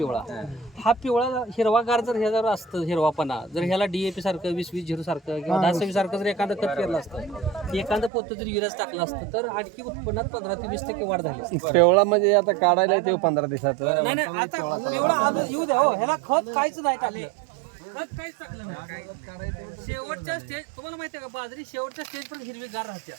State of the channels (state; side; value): drops out; left; at 8.1 s